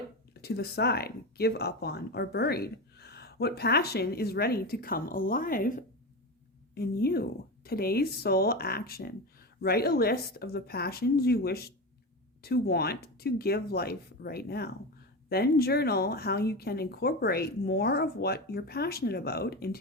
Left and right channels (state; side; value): normal; both; correlation 0.21